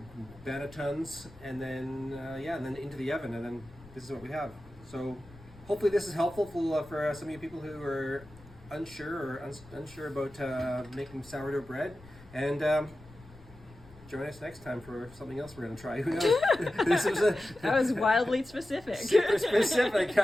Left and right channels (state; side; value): noise; left; rumble, 22 dB below the sound